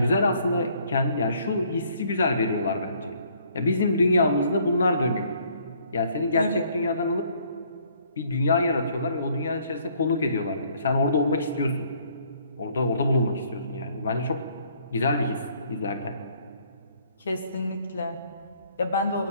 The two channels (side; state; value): both; inverted; correlation -0.63